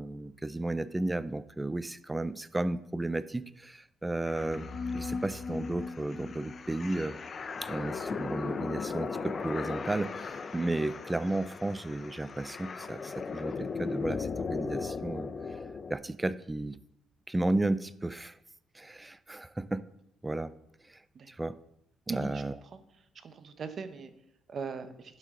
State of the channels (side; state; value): both; normal; correlation 0.93